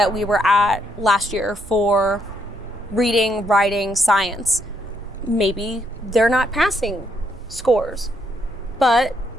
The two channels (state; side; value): normal; both; correlation 0.74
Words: we were at last year for reading, writing, science. Maybe they're not passing scores, but